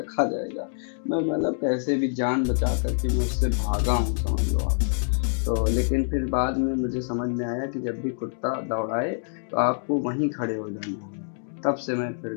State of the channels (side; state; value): right; silent; digital silence